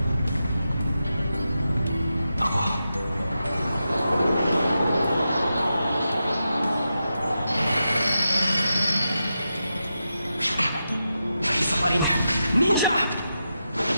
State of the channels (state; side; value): inverted; both; correlation -0.88